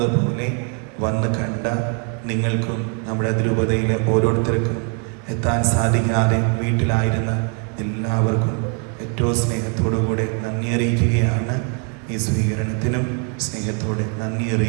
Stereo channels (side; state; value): left; quieter; 37.5 dB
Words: പോലെ വന്ന് കണ്ട നിങ്ങൾക്കും നമ്മുടെ അതിരൂപതയിലെ ഓരോരുത്തർക്കും എത്താൻ സാധിക്കാതെ വീട്ടിലായിരുന്ന എല്ലാവർക്കും ഏറ്റവും സ്നേഹത്തോടുകൂടെ നന്ദി അറിയിക്കുകയാണ്. ഈ സ്വീകരണത്തിനും സ്നേഹത്തോടെ നന്ദി